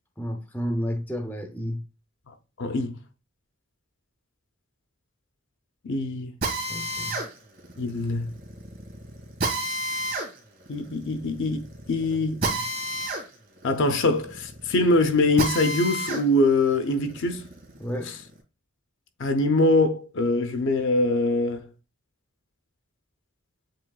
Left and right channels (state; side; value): normal; both; correlation 0.24